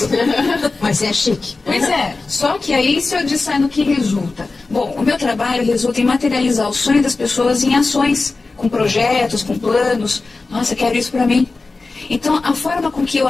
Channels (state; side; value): quieter; right; 3.7 dB